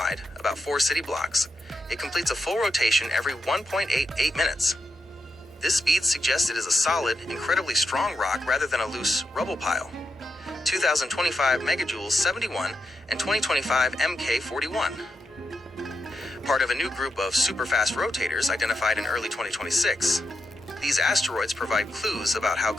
about 4 city blocks, it completes a full rotation every 1.88 minutes. This speed suggests it is a solid, incredibly strong rock rather than a loose rubble pile. 2025 megajoules 71 and 2025 MK 41. Part of a new group of superfast rotators identified in early 2026. These asteroids provide clues about how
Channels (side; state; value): both; normal; correlation 0.85